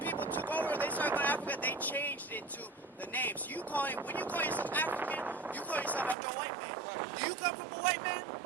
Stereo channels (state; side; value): drops out; left; at 6.2 s